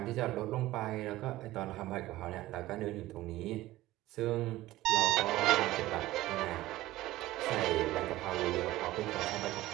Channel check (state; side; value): quieter; left; 16.7 dB